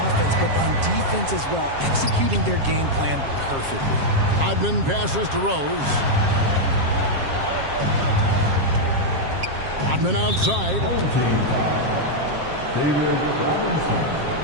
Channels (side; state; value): left; late; 7.4 ms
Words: offense, but on defense as well, executing their game plan perfectly. Rodman passes to Rose. Rodman outside. David Robinson.